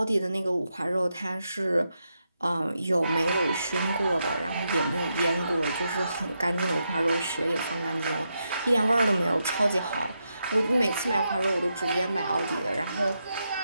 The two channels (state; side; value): inverted; both; correlation -0.84